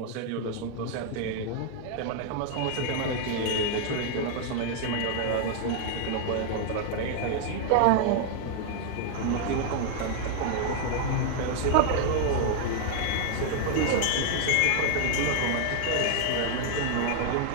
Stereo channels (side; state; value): both; different; correlation 0.00